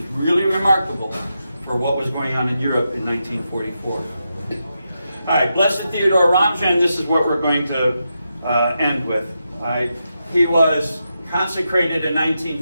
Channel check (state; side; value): inverted; both; correlation -0.86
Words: really remarkable for what was going on in Europe in 1944. All right, Blessed Theodore Ramjan, this is what we're going to end with. All right. He was consecrated in